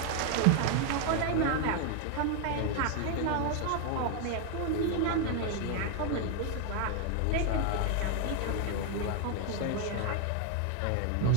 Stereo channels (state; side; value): different; both; correlation 0.01